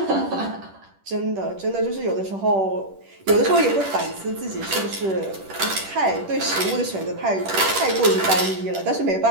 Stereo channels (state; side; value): late; left; 10 ms